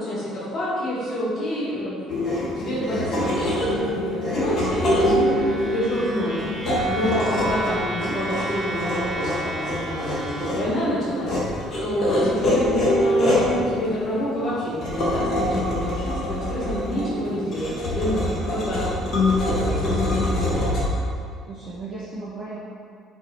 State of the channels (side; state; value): both; normal; correlation 0.61